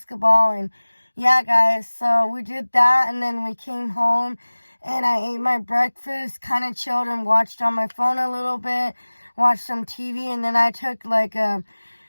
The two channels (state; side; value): inverted; both; correlation -1.00